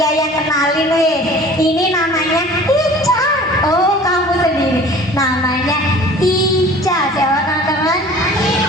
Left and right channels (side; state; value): both; normal; correlation 0.45